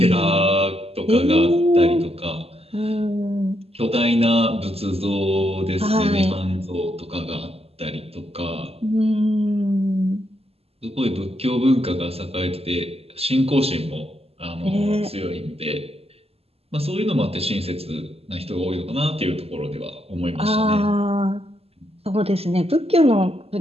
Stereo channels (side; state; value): left; late; 0.29 ms